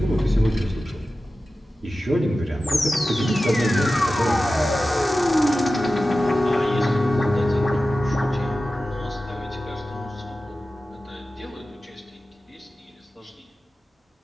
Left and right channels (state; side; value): normal; both; correlation 0.94